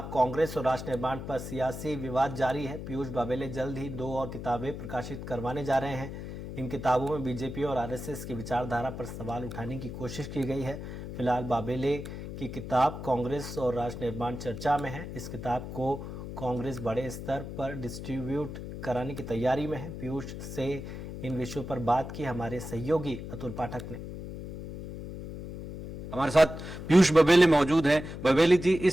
कांग्रेस और राष्ट्र निर्माण पर सियासी विवाद जारी है। पीयूष बाबेले जल्द ही 2 और किताबें प्रकाशित करवाने जा रहे हैं। इन किताबों में बीजेपी और आरएसएस की विचारधारा पर सवाल उठाने की कोशिश की गई है। फिलहाल बाबेले की किताब कांग्रेस और राष्ट्र निर्माण चर्चा में है। इस किताब को कांग्रेस बड़े स्तर पर डिस्ट्रीब्यूट कराने की तैयारी में है। पीयूष से इन विषयों पर बात की हमारे सहयोगी अतुल पाठक ने। हमारे साथ पीयूष बबेले मौजूद हैं। बबेले जी,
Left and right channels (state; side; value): noise; left; hum, 9 dB below the sound